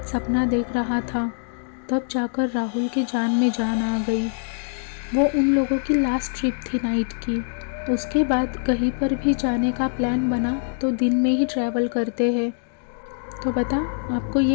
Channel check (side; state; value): right; silent; digital silence